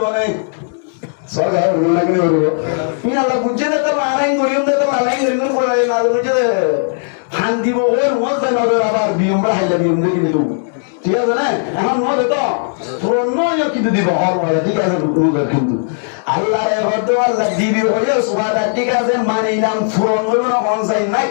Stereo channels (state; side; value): silent; right; digital silence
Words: বলে সরকার লাগে বলবো তুমি আল্লাহ বুঝে দে তো আলাইন করিম দে তো আলাইন করিম করে না বুঝে দে ফান দিব ওর মজা নজর আবার বিয়মরা হাইলা বিয়ম দে কিন্তু ঠিক আছে না এখন মজা তো পুরন নয় কিন্তু দিব আর ওয়াদা ঠিক আছে নজর কিন্তু আল্লাহর মধ্যে আল্লাহ দিবি হইয়া ওয়াদা ঠিক আছে মানিলাম পুরন হইব না কোন চাই